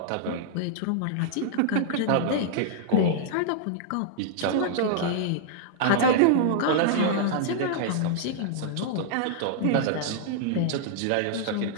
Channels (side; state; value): both; different; correlation -0.01